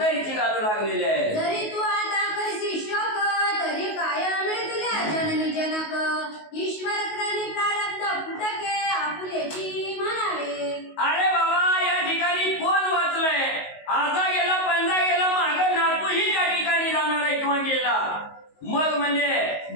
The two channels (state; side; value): late; right; 19 ms